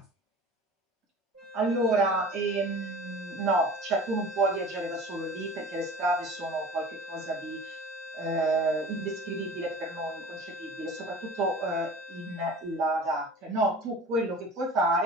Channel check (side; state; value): both; normal; correlation 0.40